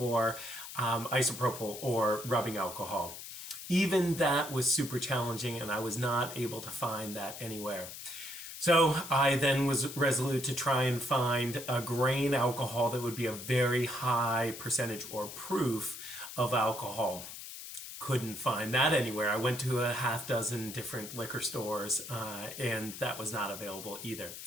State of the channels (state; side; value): noise; left; hiss, 11 dB below the sound